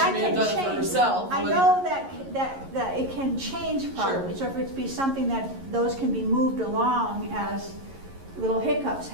may have done it for herself. I know that it can change probably. Sure. So if it be something that those can be moved along as little hiccups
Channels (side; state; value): left; late; 11 ms